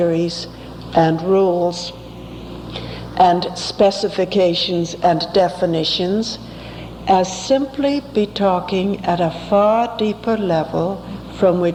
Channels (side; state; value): both; identical; correlation 1.00